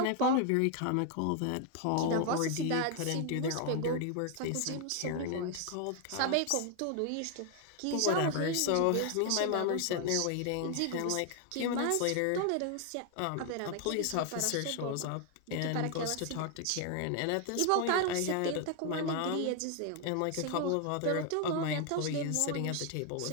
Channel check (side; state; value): both; different; correlation 0.00